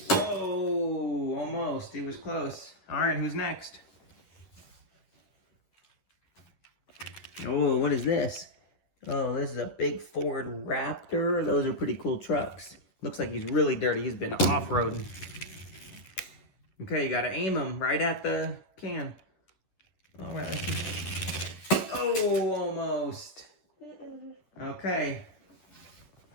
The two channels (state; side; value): late; right; 11 ms